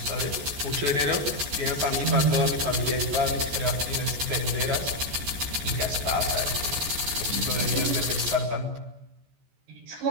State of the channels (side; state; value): left; late; 14 ms